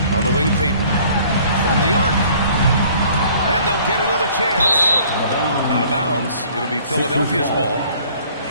On the wing, Payton. From the arc. And they'll get another chance. Out of bounds. It'll be Philadelphia's ball.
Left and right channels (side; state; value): both; inverted; correlation -0.55